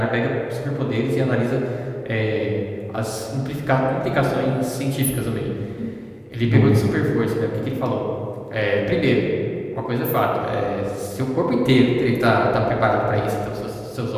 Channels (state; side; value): identical; both; correlation 1.00